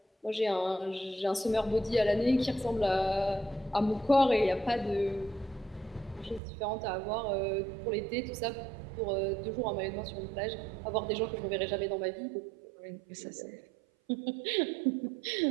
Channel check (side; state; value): left; drops out; at 6.4 s